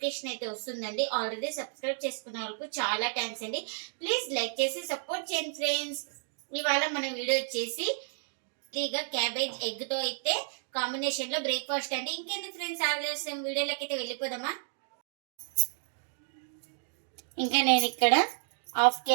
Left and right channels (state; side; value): silent; left; digital silence